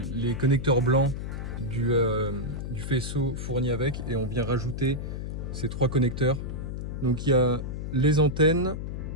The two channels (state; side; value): noise; left; hum, 5 dB below the sound